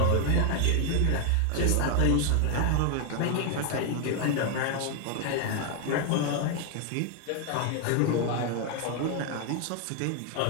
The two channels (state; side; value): different; both; correlation 0.01